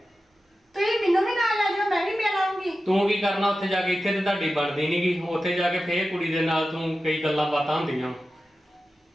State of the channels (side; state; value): both; normal; correlation 0.93